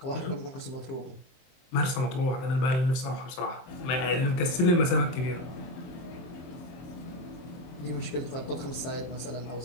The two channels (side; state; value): right; late; 23 ms